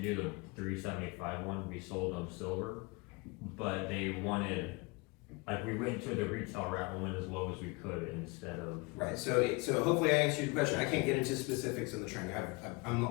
one, we sold them silver, but they wanted, like, we went to the retail route and went as low as we could instead of. Right, so hopefully I answered your question. I can't get into specifics in the training, I'm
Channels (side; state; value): right; quieter; 26.2 dB